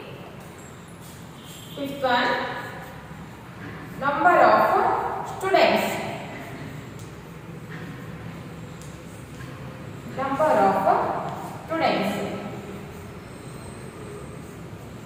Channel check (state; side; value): identical; both; correlation 1.00